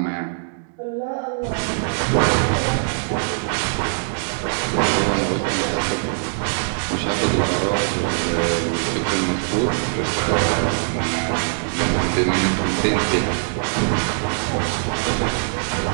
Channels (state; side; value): silent; left; digital silence